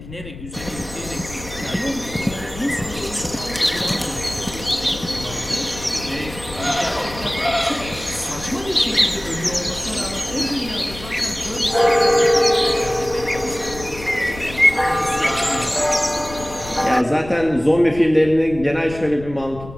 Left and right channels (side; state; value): left; noise; rumble, 14 dB below the sound